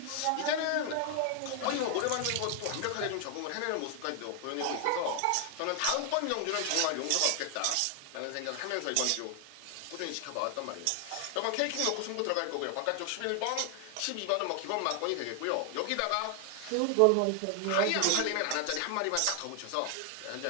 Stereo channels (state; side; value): different; both; correlation 0.00